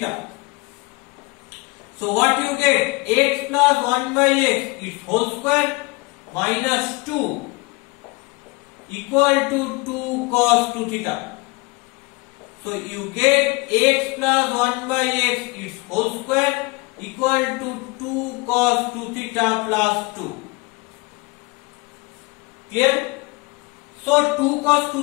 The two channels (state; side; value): quieter; right; 25.4 dB